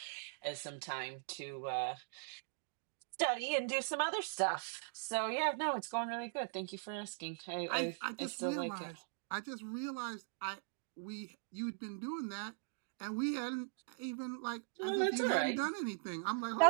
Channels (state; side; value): silent; left; digital silence